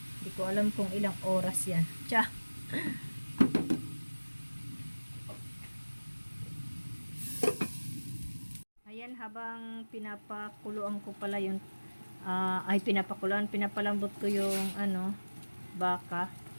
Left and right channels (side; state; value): both; inverted; correlation -1.00